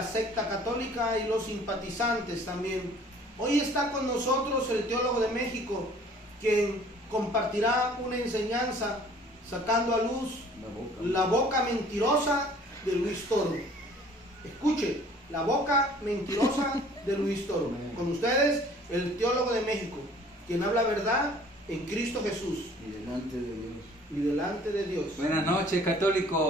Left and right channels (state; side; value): normal; both; correlation 0.53